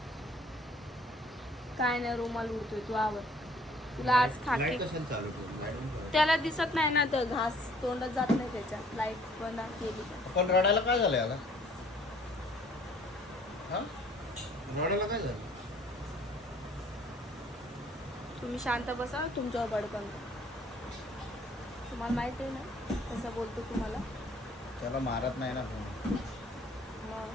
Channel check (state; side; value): normal; both; correlation 0.57